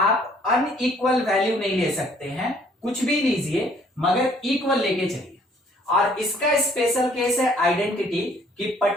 अनइक्वल वैल्यू नहीं ले सकते हैं, कुछ भी लीजिए मगर इक्वल लेके चलिए। और इसका स्पेशल केस है आइडेंटिटी, कि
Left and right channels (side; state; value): both; normal; correlation 0.61